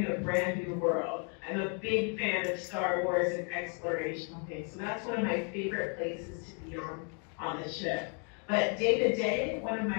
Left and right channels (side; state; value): right; quieter; 40.0 dB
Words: a brand new world. I'm a big fan of Star Wars and exploration. Okay, so that's one of my favorite places to be on the ship. But day to day, one of